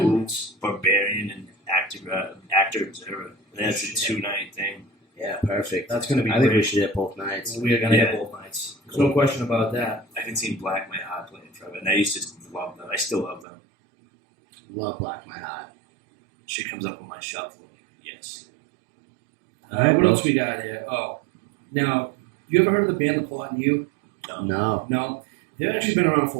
Barbarian, and Actor Observer. That's a 2-night thing. Yeah, perfect. That's going to be I think we great. should hit both nights. We are going to Yeah. hit both nights. There's no question about that. I haven't seen Black My Heart play in forever, and I used to love them. I still love them. Love Black My Heart. Shit comes up on my shuffle. Yes. What else we got here? Oh, now, you ever heard of the band The Plot and You? No. No. They've actually been around for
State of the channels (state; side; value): drops out; left; at 13.5 s